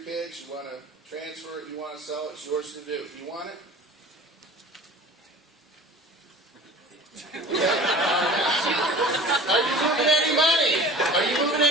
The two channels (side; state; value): both; normal; correlation 0.42